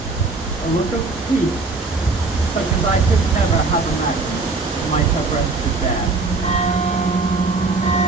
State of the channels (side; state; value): left; quieter; 3.7 dB